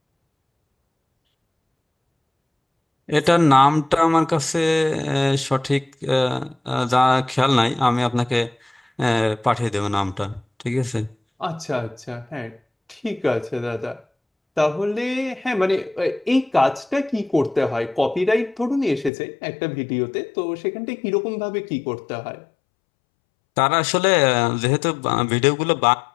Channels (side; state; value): right; drops out; at 19.1 s